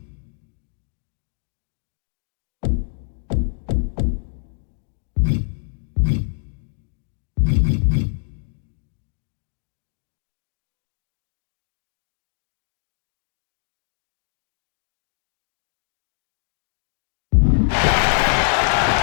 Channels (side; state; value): right; silent; 62 dB below the other